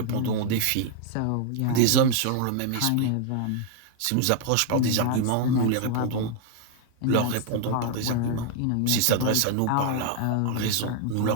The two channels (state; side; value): different; both; correlation 0.00